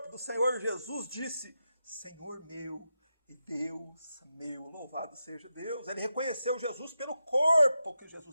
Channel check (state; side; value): inverted; both; correlation -0.88